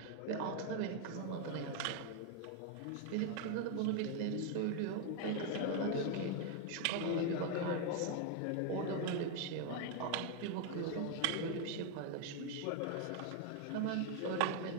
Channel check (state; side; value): different; both; correlation 0.01